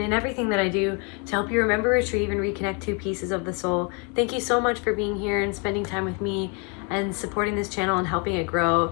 everything that I do to help you remember, retrieve, and reconnect two pieces of the soul. Thank you so much for being here and spending time with me and supporting this channel and helping it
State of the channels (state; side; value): quieter; right; 34.5 dB